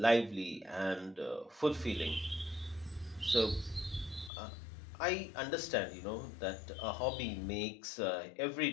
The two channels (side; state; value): right; drops out; at 4.3 s